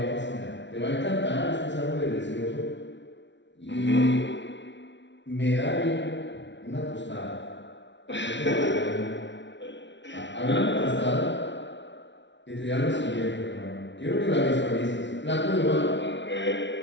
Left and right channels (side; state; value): right; late; 0.52 ms